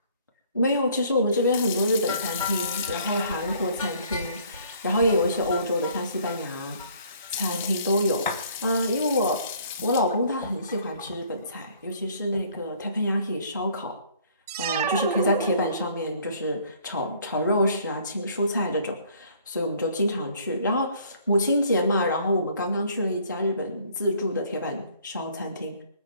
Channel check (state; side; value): inverted; both; correlation -0.59